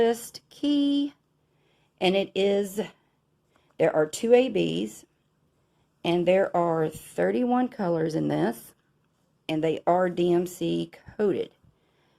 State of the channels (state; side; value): identical; both; correlation 1.00